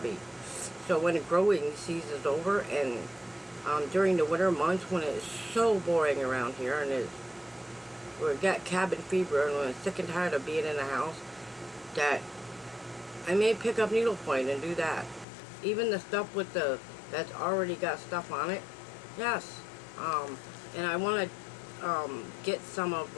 So when the growing season is over, and during the winter months when it's so boring around here, and we got cabin fever, and we're sick and tired of being in the house, that I may pick up needlepoint and do that. Even the stuff with that's already got stuff on it. Yes. And I want to get some of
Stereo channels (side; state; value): right; drops out; at 15.2 s